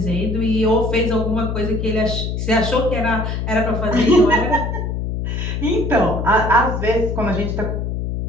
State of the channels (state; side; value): noise; left; hum, 3 dB below the sound